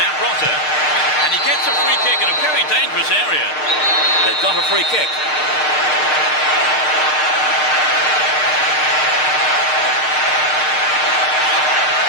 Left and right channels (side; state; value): right; late; 6.6 ms